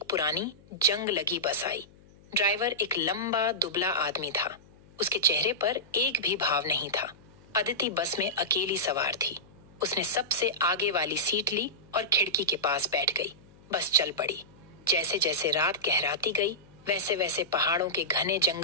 पुरानी जंग लगी बस आई। ड्राइवर एक लंबा दुबला आदमी था। उसके चेहरे पर एक भी भाव नहीं था। अदिति बस में अकेली सवार थी। उसने सबसे आगे वाली सीट ली और खिड़की के पास बैठ गई। बस चल पड़ी। जैसे जैसे रात गहराती गई, वैसे वैसे पहाड़ों के घने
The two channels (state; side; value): noise; left; hum, 26 dB below the sound